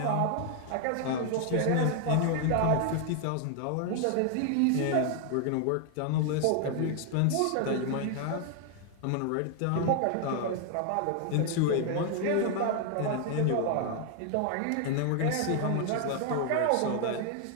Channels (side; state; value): both; different; correlation 0.00